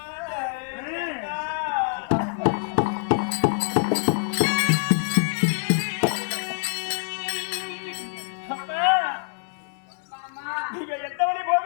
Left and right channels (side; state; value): right; silent; 58 dB below the other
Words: நீங்க எந்த வழி